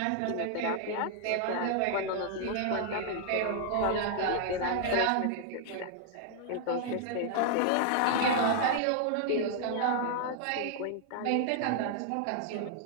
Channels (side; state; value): both; different; correlation 0.00